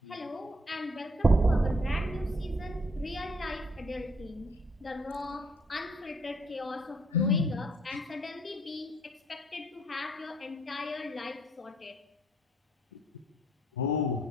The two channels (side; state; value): both; normal; correlation 0.66